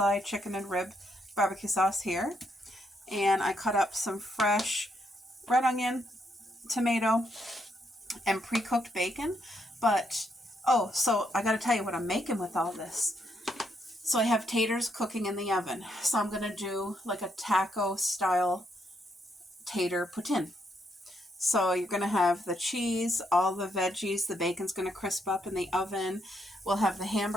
chicken and rib barbecue sauce here, and I cut up some fresh red onion, tomato, and pre-cooked bacon. But oh, so I gotta tell you what I'm making with all this. So I have taters cooking in the oven, so I'm gonna do like a taco style tater poutine. So you're going to have the cheese, all the veggies, the bacon's going to crisp up in the oven. We'll have the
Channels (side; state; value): both; normal; correlation 0.76